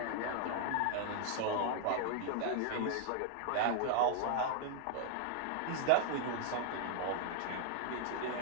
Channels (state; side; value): different; both; correlation 0.00